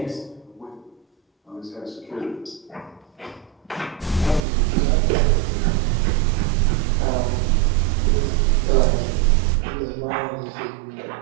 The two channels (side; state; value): left; drops out; at 4.4 s